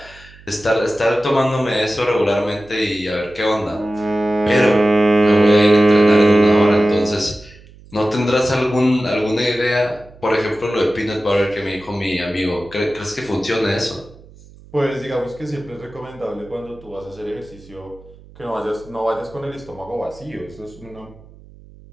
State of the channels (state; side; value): noise; right; hum, 23 dB below the sound